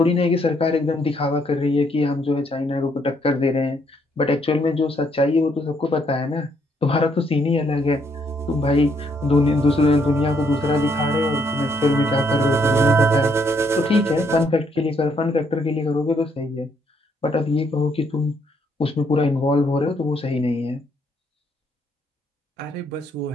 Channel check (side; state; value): both; normal; correlation 0.71